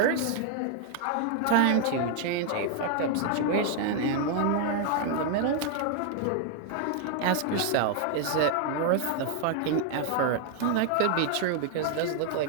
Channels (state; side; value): different; both; correlation 0.00